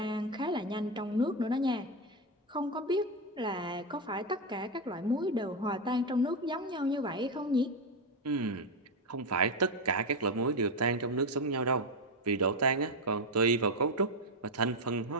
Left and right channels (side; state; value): both; normal; correlation 0.09